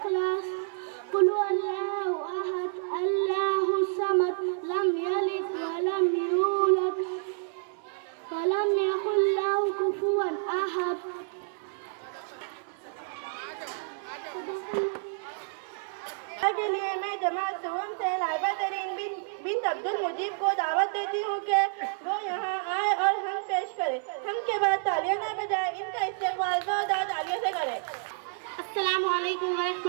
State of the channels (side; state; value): left; silent; digital silence